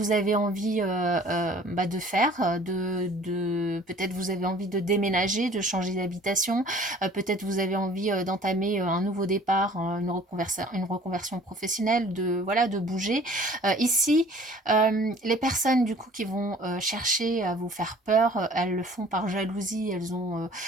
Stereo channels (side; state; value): both; normal; correlation 0.51